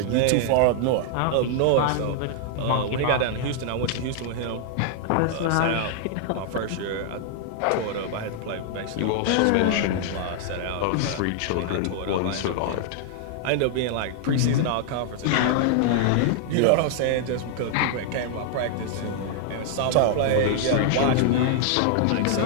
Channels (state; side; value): different; both; correlation -0.01